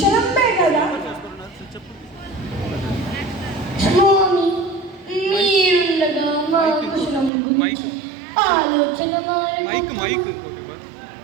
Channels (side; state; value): left; drops out; at 7.3 s